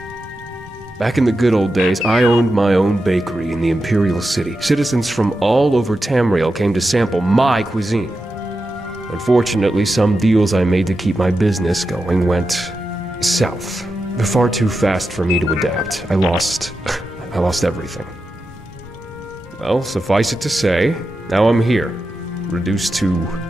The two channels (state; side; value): normal; both; correlation 0.90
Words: Back in the good old days, I owned my own bakery in the Imperial City. Citizens from all over Tamerial came to sample my cuisine. Unfortunately, some deals I made to keep my business going went south. They're far too fast for me to adapt. I lost everything. Well, suffice it to say, now I'm here, reduced to